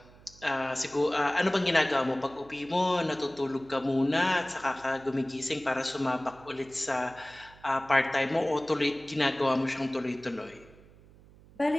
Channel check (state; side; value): noise; right; hum, 24 dB below the sound